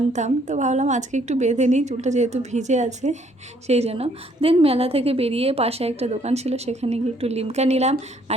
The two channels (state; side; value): normal; both; correlation 0.65